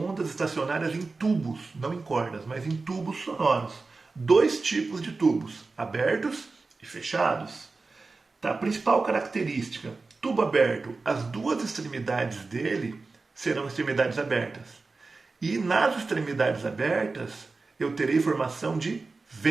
estacionárias em tubos, não em cordas, mas em tubos sonoros. Dois tipos de tubos, abertos e fechados. Tá? A principal característica, tubo aberto, as duas extremidades dele serão extremidades abertas. E nas extremidades abertas, eu terei formação de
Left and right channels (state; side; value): quieter; left; 3.9 dB